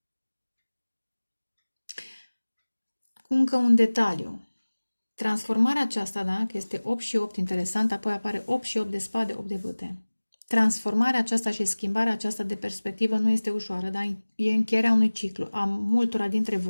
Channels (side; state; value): both; inverted; correlation -1.00